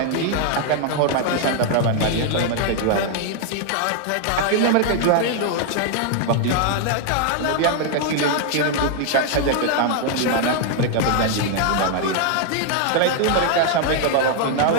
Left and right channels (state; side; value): different; both; correlation 0.00